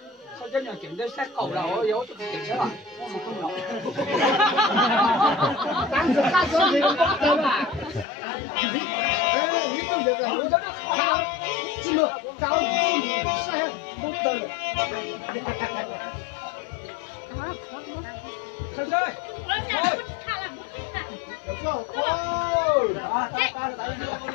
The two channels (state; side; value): drops out; right; at 8.1 s